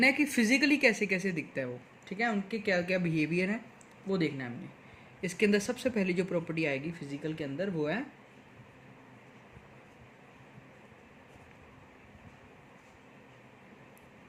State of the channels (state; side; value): identical; both; correlation 1.00